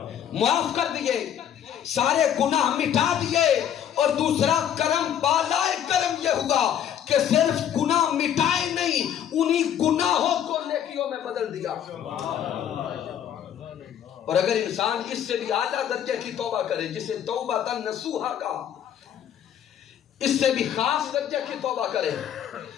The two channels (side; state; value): right; quieter; 9.7 dB